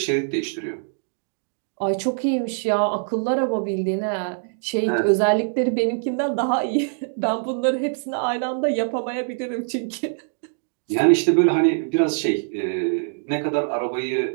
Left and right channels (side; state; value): left; silent; digital silence